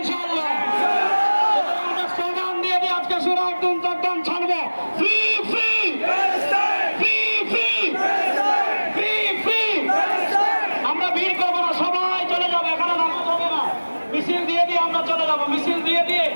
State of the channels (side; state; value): both; inverted; correlation -1.00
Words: আমরা স্লোগান দিয়ে দিয়ে আজকে সুরা একদম চট্টগ্রাম ছাড়বো free free free free free free. আমরা ভিড় করবো না, সবাই চলে যাবো, এখানে নামাজ হবে না। মিছিল দিয়ে দিয়ে আমরা চলে যাবো, মিছিল দিয়ে দিয়ে